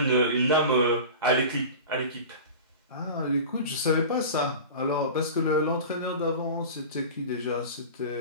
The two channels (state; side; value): inverted; both; correlation -0.33